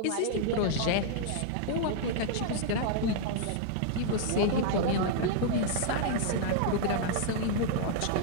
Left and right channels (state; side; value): different; both; correlation -0.01